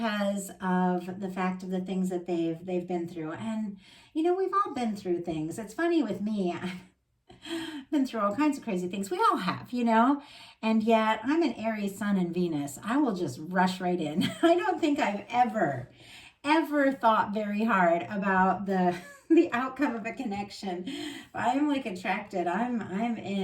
of the fact of the things that they've been through. And we've all been through things. It's funny with me. Been through all kinds of crazy things. We all have, and yet I'm an Aries sun and Venus. I will just rush right in. I don't think I've ever thought very hard about the outcome of a connection. I'm like attracted. I'm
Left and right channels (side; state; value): both; identical; correlation 1.00